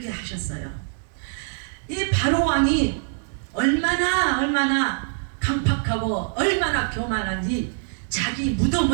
하셨어요. 이 바로 왕이 얼마나 강팍하고 얼마나 교만한지 자기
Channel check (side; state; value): left; silent; digital silence